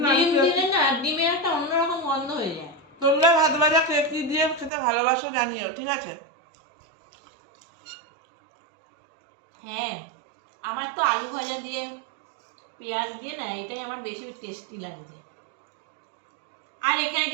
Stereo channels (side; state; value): left; drops out; at 4.7 s